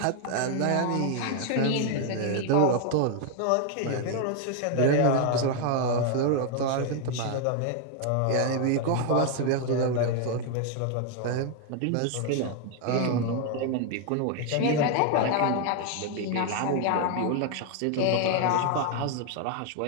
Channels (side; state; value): both; different; correlation 0.00